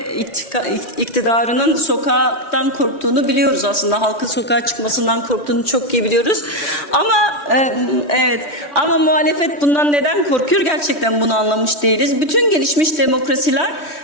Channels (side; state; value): right; late; 3.1 ms